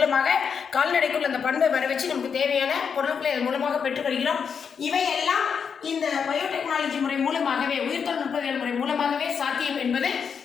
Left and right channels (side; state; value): right; quieter; 6.6 dB